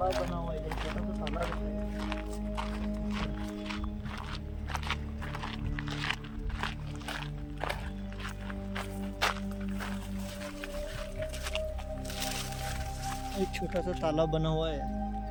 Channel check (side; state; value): both; identical; correlation 1.00